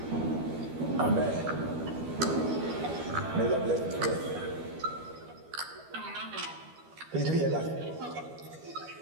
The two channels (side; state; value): left; late; 12 ms